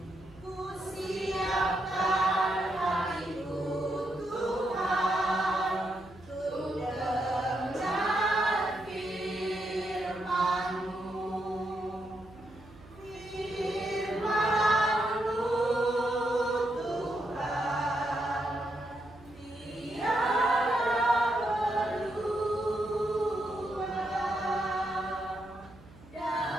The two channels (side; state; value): right; noise; hum, 22 dB below the sound